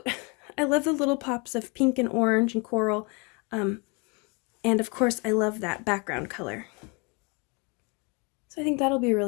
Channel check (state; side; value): quieter; right; 31.2 dB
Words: I love the little pops of pink and orange and coral. And of course, I love that background color. So I think that'll be a